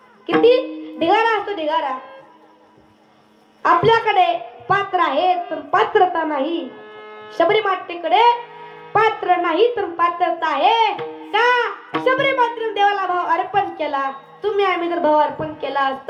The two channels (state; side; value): identical; both; correlation 1.00